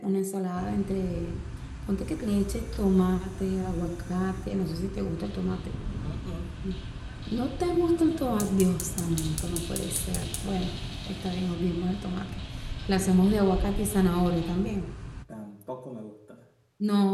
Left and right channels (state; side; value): identical; both; correlation 1.00